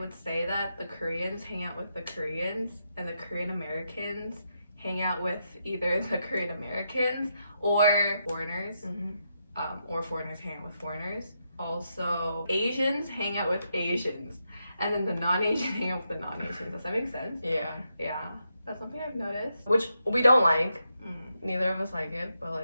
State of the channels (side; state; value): both; inverted; correlation -0.83